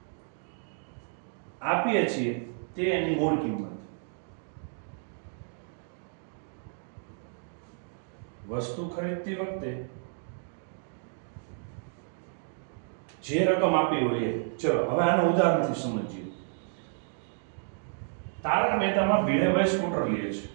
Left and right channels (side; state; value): left; silent; digital silence